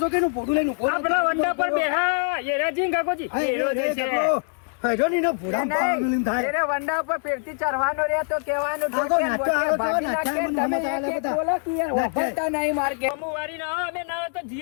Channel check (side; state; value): right; silent; 55 dB below the other